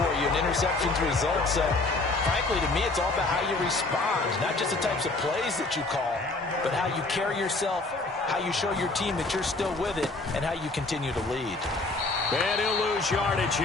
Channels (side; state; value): right; quieter; 3.2 dB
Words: you, and interceptions result. So, frankly, to me, it's all about how you respond, not just the types of plays that you call, but how you carry yourself, how you show your team that you're still with it, and how you continue to lead. And he'll lose yardage